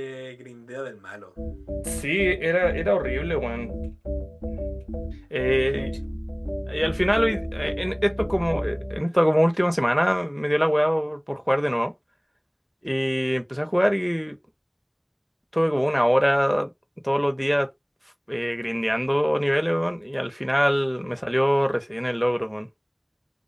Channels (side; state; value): both; identical; correlation 1.00